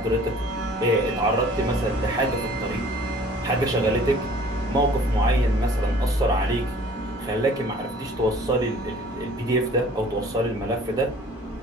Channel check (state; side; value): normal; both; correlation 0.51